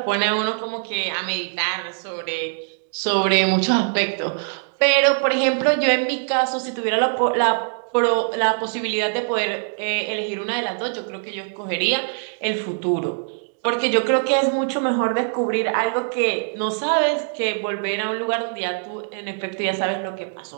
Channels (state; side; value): silent; left; 64 dB below the other